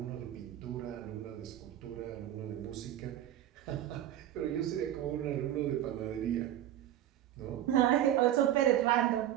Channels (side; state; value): left; quieter; 12.0 dB